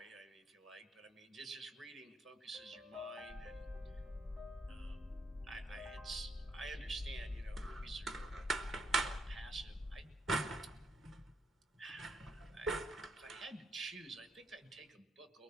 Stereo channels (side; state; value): both; normal; correlation 0.76